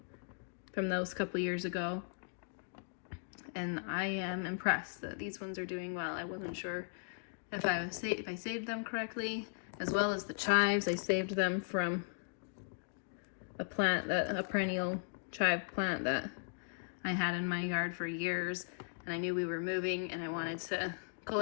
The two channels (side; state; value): right; silent; digital silence